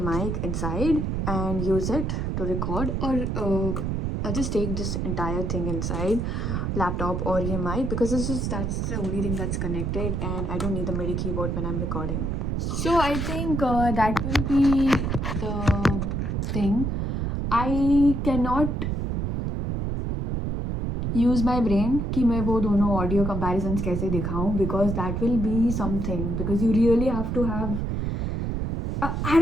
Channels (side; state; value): right; noise; rumble, 1 dB below the sound